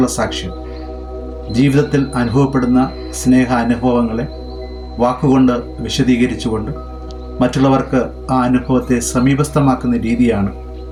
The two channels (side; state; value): both; identical; correlation 1.00